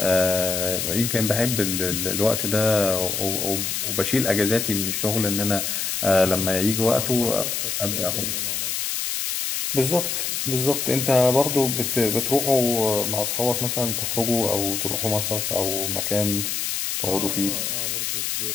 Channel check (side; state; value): left; noise; hiss, 1 dB below the sound